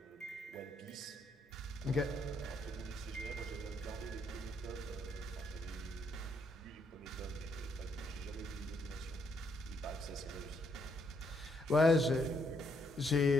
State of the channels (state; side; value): normal; both; correlation 0.73